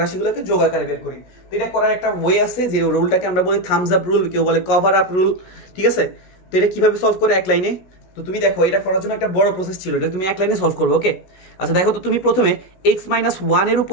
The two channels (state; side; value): late; right; 16 ms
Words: রাশিগুলোকে যোগ আকারে বের করি। তো এটা করার একটা ওয়ে আছে, যে রুলটাকে আমরা বলি থামস আপ রুল, কেউ বলে কভার আপ রুল, ঠিক আছে। তো এটা কিভাবে সলভ করে এক লাইনে, তো তুমি দেখো এটা করার জন্য একটা বড় প্রসেস ছিল, এটা তুমি এক লাইনে সলভ করবে। ওকে, আচ্ছা দেখো তো, তুমি প্রথমে x-1 এর